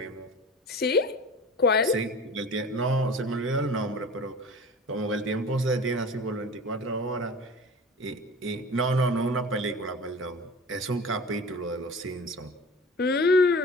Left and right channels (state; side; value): normal; both; correlation 0.38